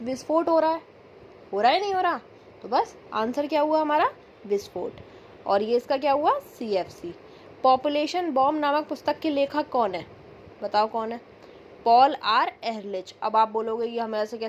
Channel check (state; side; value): identical; both; correlation 1.00